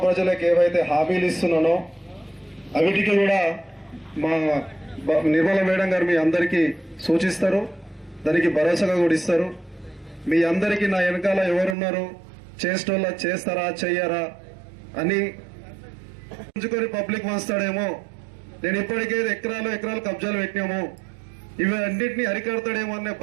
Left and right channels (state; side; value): drops out; left; at 11.8 s